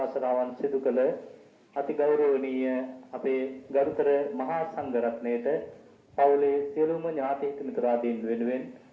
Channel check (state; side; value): identical; both; correlation 1.00